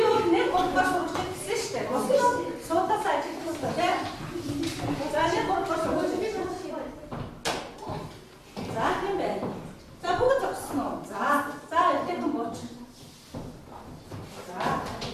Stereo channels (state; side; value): identical; both; correlation 1.00